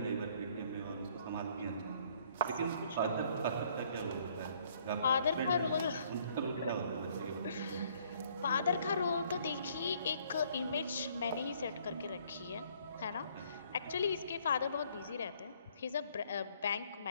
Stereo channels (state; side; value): inverted; both; correlation -0.63